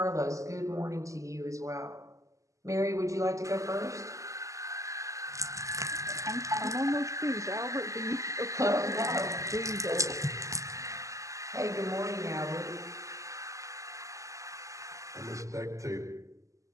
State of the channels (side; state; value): left; late; 0.16 ms